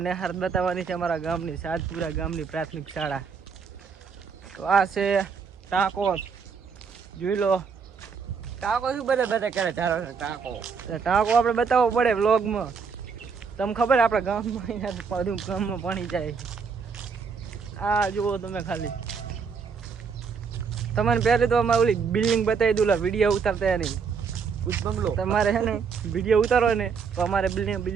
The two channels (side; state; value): left; quieter; 5.8 dB